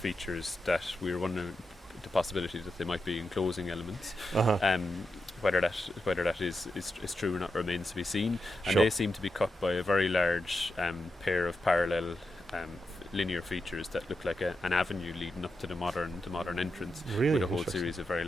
that we're wondering the possibility that they might be enclosing elements. whether that is true or not remains to be seen. And Sure. they seem to be cut by a very large pair of parallel linear features that look like an avenue leading up to the modern entrance, Really with a whole interesting. series of very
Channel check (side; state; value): both; normal; correlation 0.87